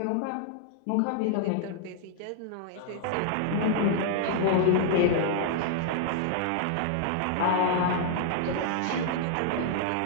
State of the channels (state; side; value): different; both; correlation -0.01